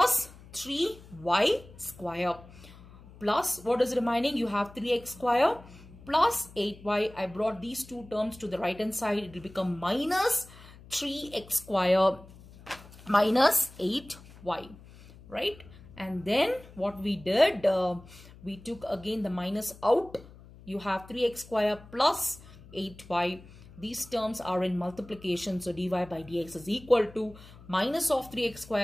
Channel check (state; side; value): noise; left; hum, 20 dB below the sound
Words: 3y square. Plus what is remaining? You have 3x square plus 8y. I brought these two terms to the right hand side. It will become minus 3x square minus 8y, right? And then what we did, we took again the minus out. You have 3x square plus 8y. These terms are in multiplication, so dy by dx is equal to minus of 3x